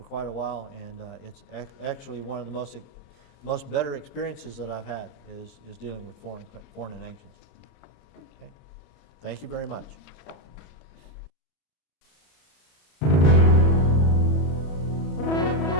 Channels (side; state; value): right; late; 34 ms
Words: quite a while, and it's actually one of the most better experiences that I've had is dealing with foreign and ancients. Okay, thank you very much.